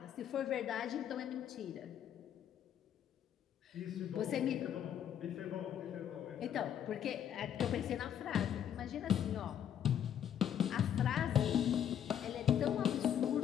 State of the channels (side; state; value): right; quieter; 9.7 dB